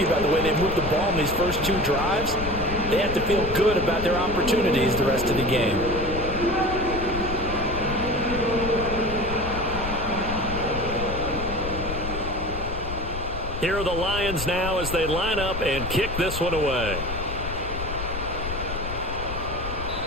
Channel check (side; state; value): left; noise; rumble, 7 dB below the sound